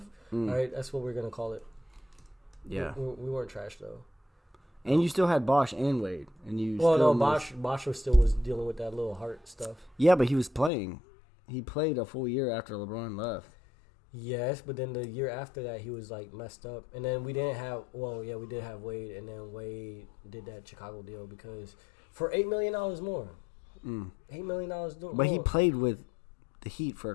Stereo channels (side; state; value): right; drops out; at 10.7 s